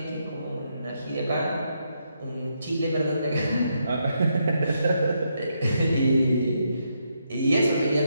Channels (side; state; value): both; inverted; correlation -0.79